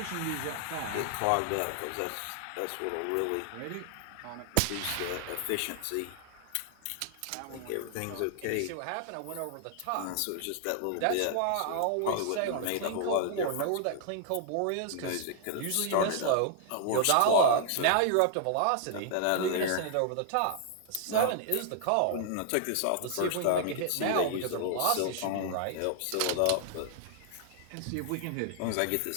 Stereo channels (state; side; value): different; both; correlation -0.01